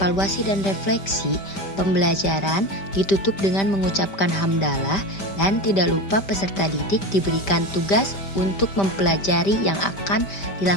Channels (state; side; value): late; right; 5.1 ms